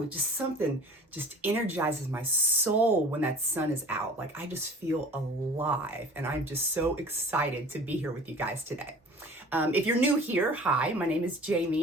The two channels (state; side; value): normal; both; correlation 0.44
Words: just something just energizes my soul when that sun is out. Like I just feel alive and I'm just so excited to be here with you guys today. If you're new here, hi, my name is